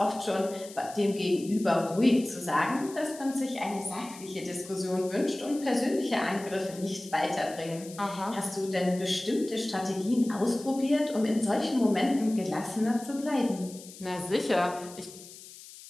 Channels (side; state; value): left; noise; hiss, 17 dB below the sound